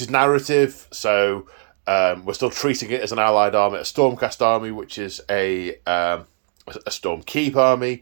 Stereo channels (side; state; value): left; silent; digital silence